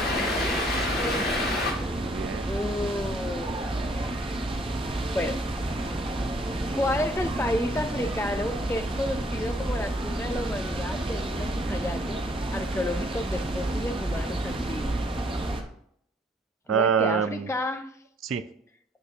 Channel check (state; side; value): normal; both; correlation 0.64